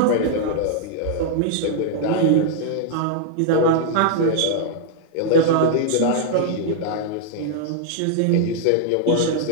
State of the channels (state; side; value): different; both; correlation -0.01